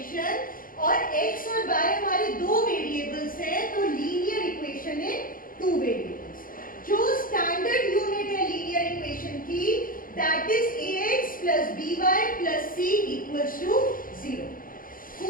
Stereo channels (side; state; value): right; late; 0.41 ms